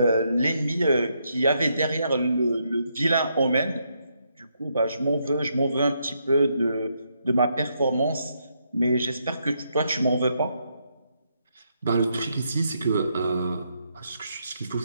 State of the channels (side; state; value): both; inverted; correlation -0.78